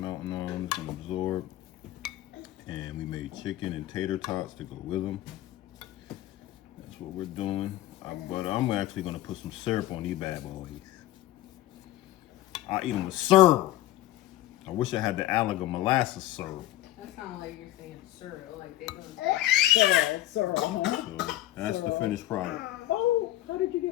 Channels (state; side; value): quieter; right; 14.7 dB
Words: on them, it's gonna absorb. And we made chicken and tater tots to go with them. That's what we're doing. But I'm actually gonna put some syrup on these bad boys. I eat them with syrup. I wish I had the Alaga molasses syrup. That sounds like you're saying syrup, like they don't. Sorry. So that's the finished product. Oh, how did you